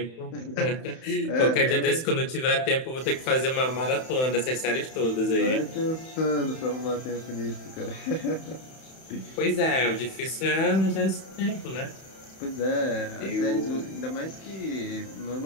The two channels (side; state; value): right; late; 31 ms